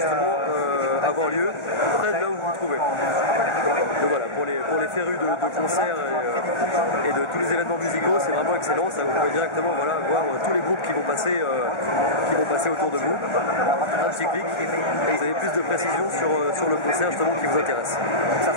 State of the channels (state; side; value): late; right; 1.4 ms